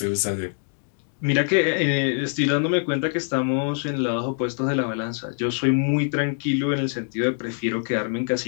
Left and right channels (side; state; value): right; silent; 62 dB below the other